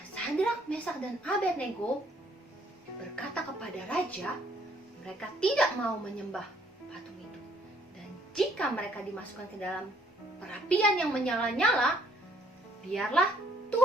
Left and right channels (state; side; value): normal; both; correlation 0.64